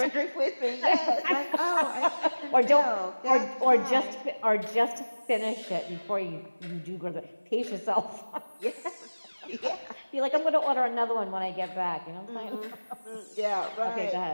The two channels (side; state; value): both; inverted; correlation -1.00